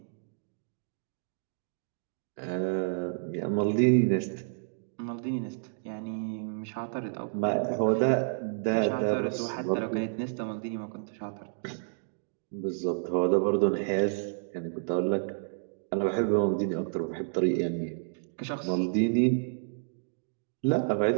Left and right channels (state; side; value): silent; left; digital silence